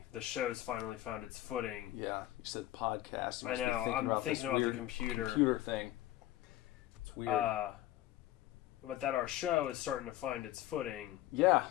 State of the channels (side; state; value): right; quieter; 14.9 dB